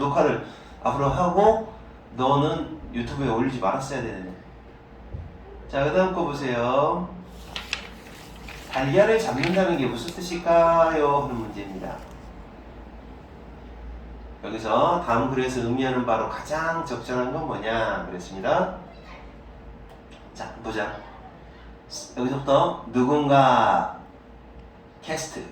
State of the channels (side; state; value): both; identical; correlation 1.00